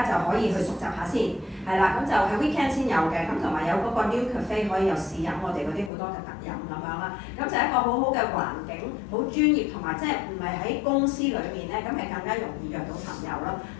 就可以去熟習下先。係啦，咁就係 weekend 先有嘅，咁同埋有嗰個 New Cafe 可以有試飲我哋嗰啲好多嘅特飲咁樣啦，咁就係一個好好嘅環境，好專業同埋即係唔係喺公司裏面咧，咁係更加容易約到朋友咯，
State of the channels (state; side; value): drops out; right; at 5.9 s